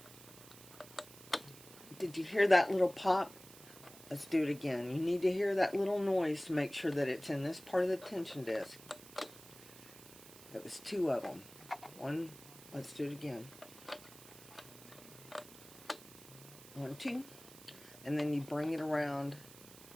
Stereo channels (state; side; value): noise; right; hiss, 19 dB below the sound